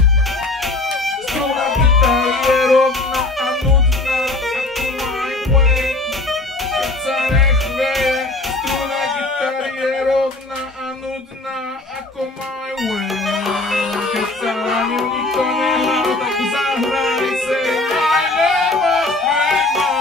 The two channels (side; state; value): right; quieter; 3.0 dB